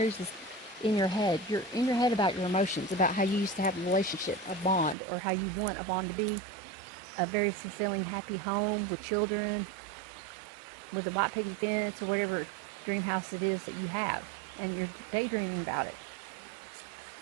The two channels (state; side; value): drops out; left; at 5.0 s